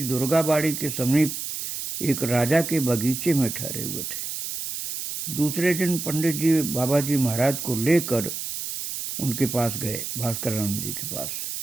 दुर्गाबाड़ी के समीप एक राजा के बगीचे में ठहरे हुए थे। दूसरे दिन पंडित जी बाबा जी महाराज को लेकर उनके पास गए, भास्करानंद जी के पास।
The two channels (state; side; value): noise; right; hiss, 5 dB below the sound